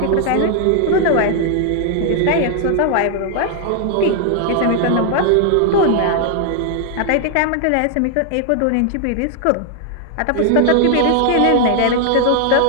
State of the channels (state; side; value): different; both; correlation 0.00